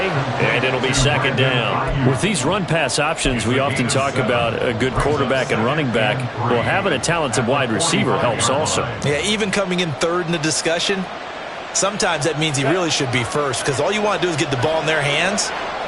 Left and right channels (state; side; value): identical; both; correlation 1.00